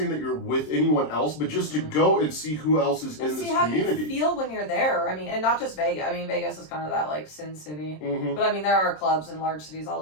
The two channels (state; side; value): late; right; 26 ms